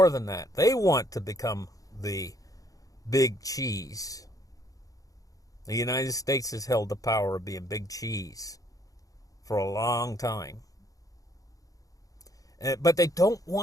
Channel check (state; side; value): late; right; 0.17 ms